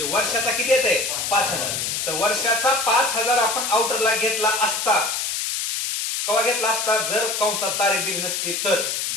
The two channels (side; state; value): left; noise; hiss, 1 dB below the sound